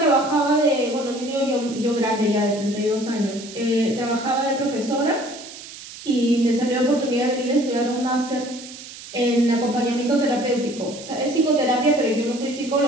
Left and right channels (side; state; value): right; noise; hiss, 14 dB below the sound